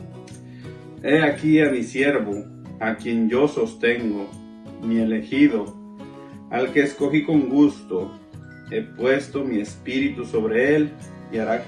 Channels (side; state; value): both; identical; correlation 1.00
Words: He aquí a mi siervo, a quien yo sostengo, mi elegido, al que escogí con gusto. He puesto mi espíritu sobre él y hará